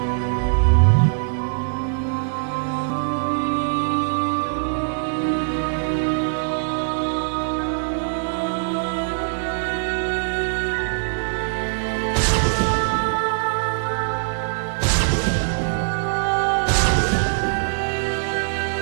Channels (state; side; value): silent; left; digital silence